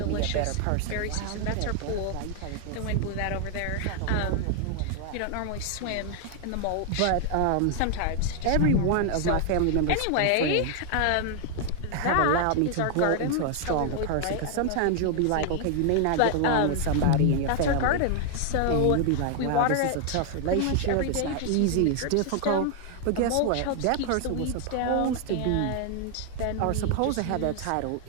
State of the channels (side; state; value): both; different; correlation 0.00